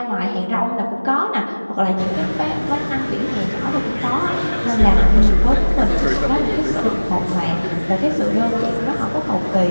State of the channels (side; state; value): both; inverted; correlation -1.00